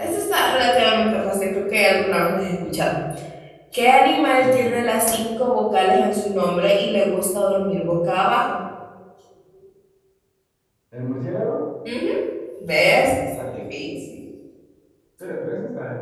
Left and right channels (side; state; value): both; identical; correlation 1.00